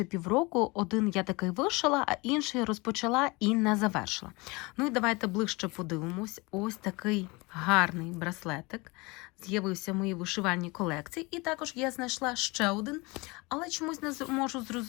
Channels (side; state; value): right; quieter; 25.4 dB